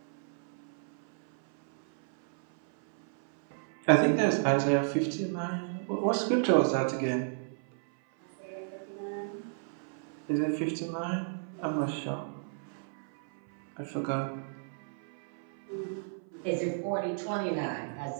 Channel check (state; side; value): silent; left; 56 dB below the other